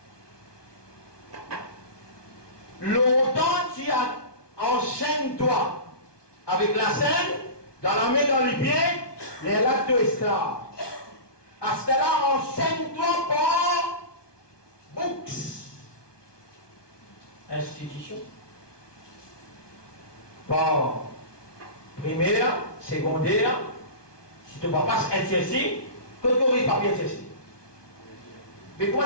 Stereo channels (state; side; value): late; right; 1.2 ms